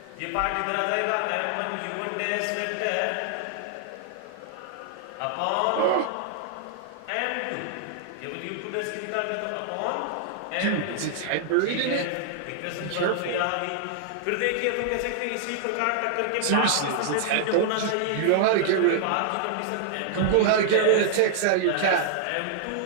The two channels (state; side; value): different; both; correlation -0.01